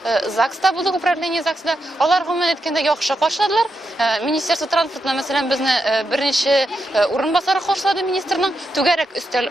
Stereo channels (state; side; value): normal; both; correlation 0.85